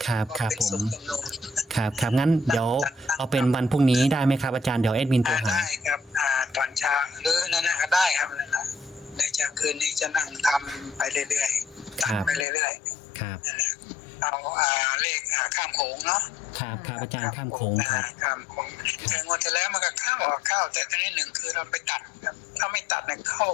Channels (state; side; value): drops out; right; at 12.5 s